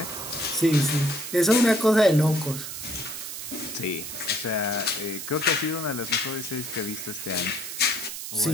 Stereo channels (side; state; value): right; noise; hiss, 8 dB below the sound